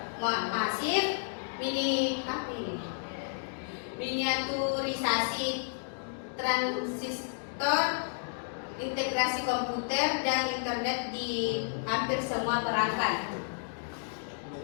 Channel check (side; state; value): right; silent; digital silence